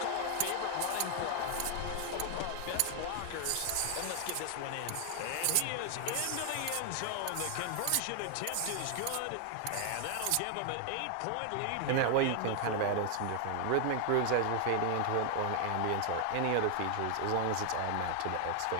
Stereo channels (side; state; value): both; different; correlation 0.00